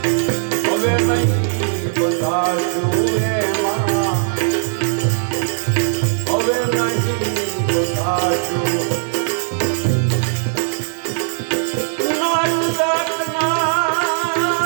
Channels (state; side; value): silent; left; 67 dB below the other